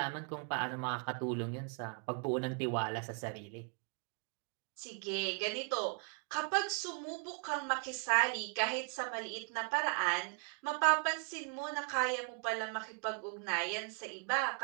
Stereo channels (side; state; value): left; quieter; 35.7 dB